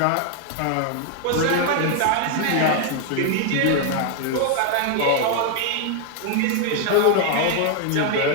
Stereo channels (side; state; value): both; different; correlation 0.00